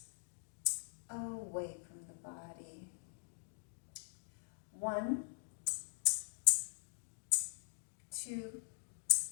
away from the body. 1, 2,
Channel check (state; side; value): silent; right; digital silence